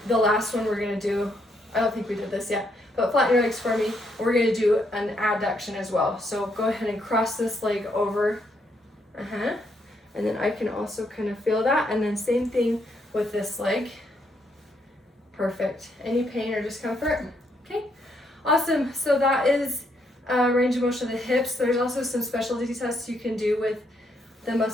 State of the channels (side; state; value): both; normal; correlation 0.75